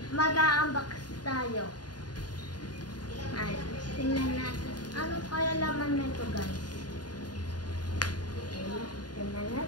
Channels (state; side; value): late; right; 0.70 ms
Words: mag-a-unbox tayo. Ay, tingnan natin. Ano kaya laman nito guys? Okay, tingnan